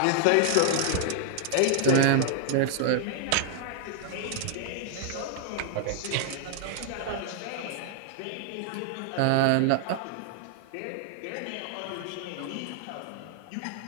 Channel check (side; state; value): both; different; correlation -0.01